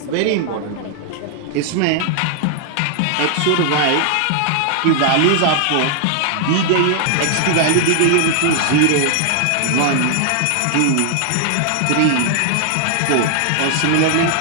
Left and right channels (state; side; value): different; both; correlation 0.00